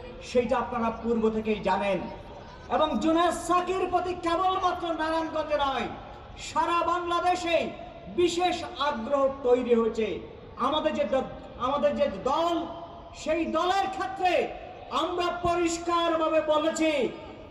সেইটা আপনারা পূর্ব থেকেই জানেন। এবং জোনায়েদ সাকির প্রতি কেবলমাত্র নারায়ণগঞ্জে নয়, সারা বাংলাদেশে বিশেষ আগ্রহ তৈরি হয়েছে। আমাদের যে দল, সেই দলের ক্ষেত্রে আমরা পরিষ্কারভাবে বলেছি,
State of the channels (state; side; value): identical; both; correlation 1.00